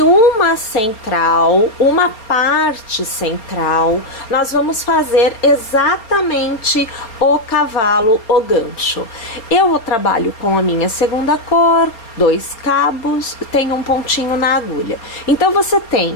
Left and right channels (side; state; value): right; late; 4.3 ms